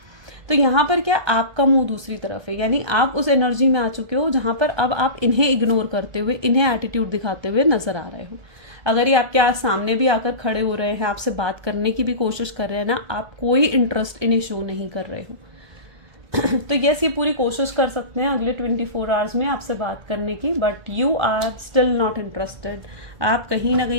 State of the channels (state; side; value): late; left; 1.2 ms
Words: तो यहाँ पर क्या, आपका मुंह दूसरी तरफ है, यानी आप उस एनर्जी में आ चुके हो जहाँ पर अब आप इन्हें इग्नोर करते हुए, इन्हें एटीट्यूड दिखाते हुए नजर आ रहे हो। अगर ये आपके सामने भी आकर खड़े हो रहे हैं, आपसे बात करने की भी कोशिश कर रहे हैं ना, आप कोई इंटरेस्ट इन्हें शो नहीं कर रहे हो। तो यस, ये पूरी कोशिश कर सकते हैं अगले 24 आवर्स में आपसे बात करने की, but you are still not interested. आप कहीं ना